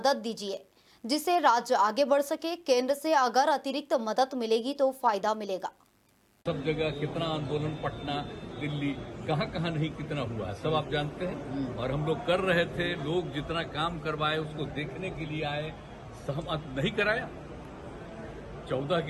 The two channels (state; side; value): identical; both; correlation 1.00